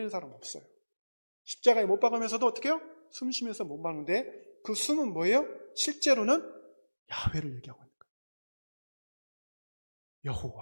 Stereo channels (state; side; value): inverted; both; correlation -1.00